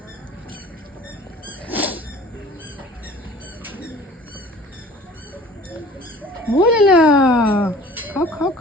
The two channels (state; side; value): normal; both; correlation 0.47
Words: বলে না, খাও খাও